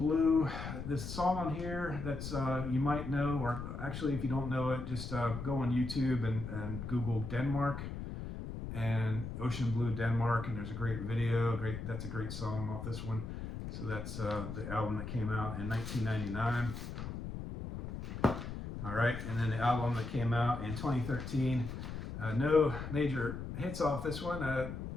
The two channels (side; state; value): left; noise; rumble, 7 dB below the sound